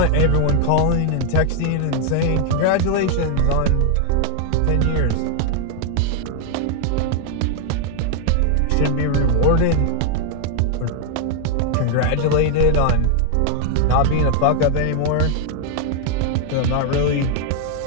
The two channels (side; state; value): both; different; correlation 0.00